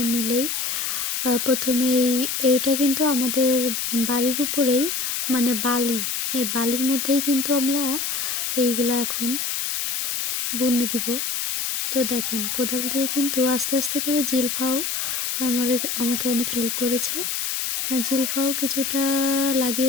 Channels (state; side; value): noise; left; hiss, 1 dB below the sound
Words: মিলেই প্রথমেই এটা কিন্তু আমাদের বাড়ির উপরেই, মানে বালি, এই বালির মধ্যেই কিন্তু আমরা এইগুলা এখন বুনে দিব। তো দেখেন, কোদাল দিয়ে কিন্তু আস্তে আস্তে করে জিলফাও আমাকে অনেক হেল্প করেছে। জিলফাও কিছুটা